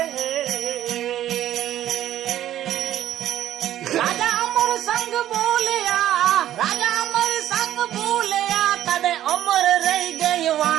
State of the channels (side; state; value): left; quieter; 12.3 dB